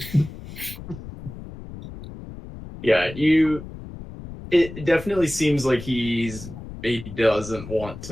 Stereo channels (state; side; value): noise; left; rumble, 13 dB below the sound